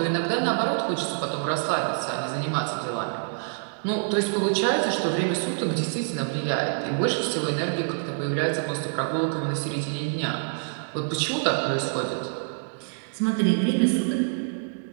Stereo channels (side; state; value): left; silent; digital silence